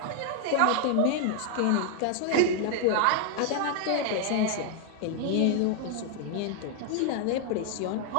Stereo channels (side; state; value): both; different; correlation 0.00